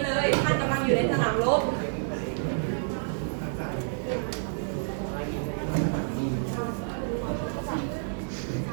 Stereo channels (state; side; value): silent; left; 55 dB below the other